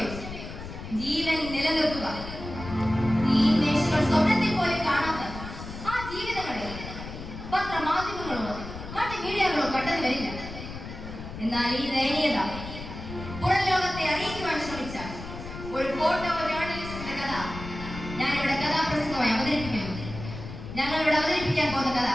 ഉള്ളൂ, ജീവൻ നിലനിർത്തുക. ഈ മേശകൾ സ്വപ്നത്തിൽ പോലും കാണാത്ത ആ ജീവിതങ്ങളെ പത്രമാധ്യമങ്ങളോ മറ്റ് മീഡിയകളോ കണ്ടെന്ന് വരില്ല. എന്നാൽ ഈ ദയനീയത പുറം ലോകത്തെ അറിയിക്കുവാൻ ശ്രമിച്ച ഒരു ഫോട്ടോ ജേർണലിസ്റ്റിന്റെ കഥ ഞാനിവിടെ കഥാപ്രസംഗമായി അവതരിപ്പിക്കുന്നു. ഞങ്ങളിവിടെ അവതരിപ്പിക്കാൻ പോകുന്ന കഥ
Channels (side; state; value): left; noise; rumble, 10 dB below the sound